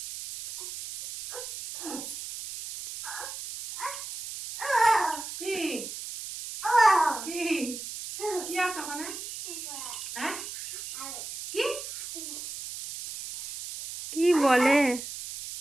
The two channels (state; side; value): noise; right; hiss, 9 dB below the sound